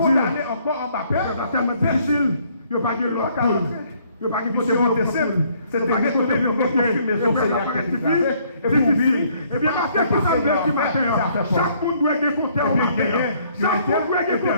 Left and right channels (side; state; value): both; inverted; correlation -0.64